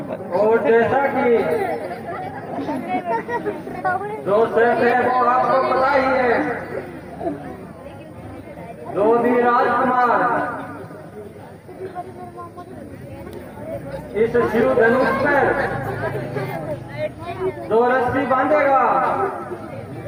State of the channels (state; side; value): identical; both; correlation 1.00